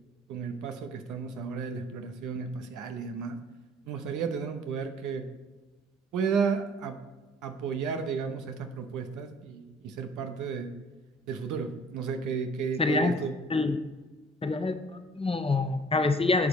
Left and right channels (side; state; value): both; normal; correlation 0.53